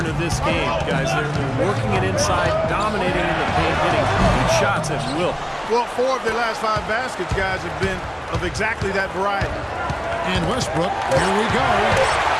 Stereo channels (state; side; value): identical; both; correlation 1.00